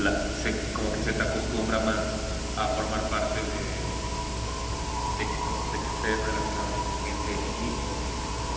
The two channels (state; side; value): identical; both; correlation 1.00